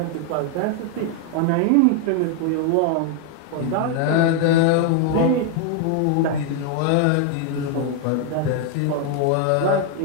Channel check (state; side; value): different; both; correlation 0.00